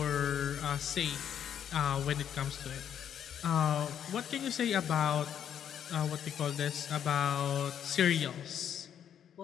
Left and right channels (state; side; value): quieter; right; 9.2 dB